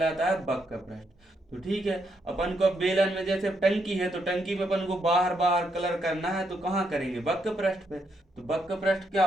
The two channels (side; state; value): both; normal; correlation 0.78